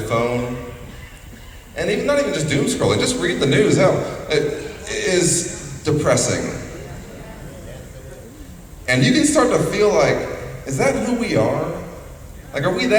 phone, and even not even just doom scrolling, just read the news, hell, it is depressing. And you can start to feel like, is that who we are? Like, are we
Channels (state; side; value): identical; both; correlation 1.00